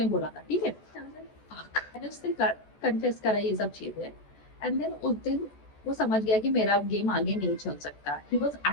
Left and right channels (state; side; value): late; right; 14 ms